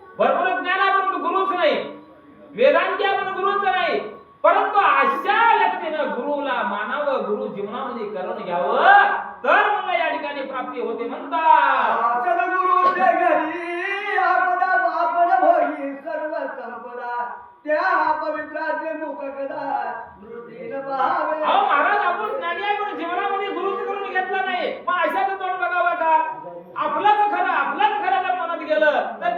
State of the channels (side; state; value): both; identical; correlation 1.00